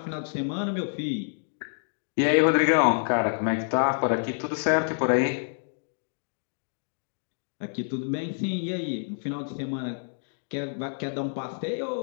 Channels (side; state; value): right; silent; digital silence